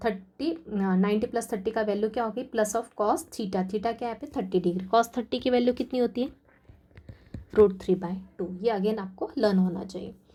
90 + 30 का वैल्यू क्या होगी, plus of cos theta, theta क्या है यहाँ पे 30 डिग्री। cos 30 की वैल्यू कितनी होती है, √3/2। ये अगेन आपको लर्न होना चाहिए।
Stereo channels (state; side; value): identical; both; correlation 1.00